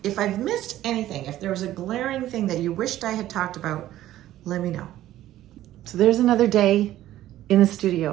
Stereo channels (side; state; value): left; quieter; 13.8 dB